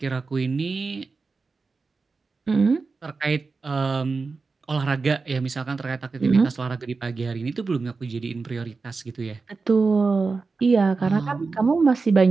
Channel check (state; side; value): quieter; left; 4.3 dB